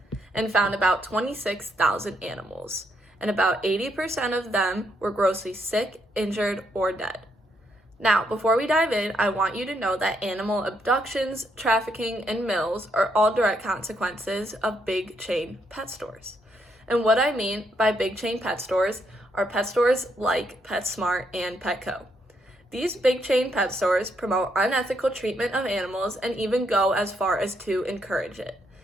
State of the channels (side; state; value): both; normal; correlation 0.75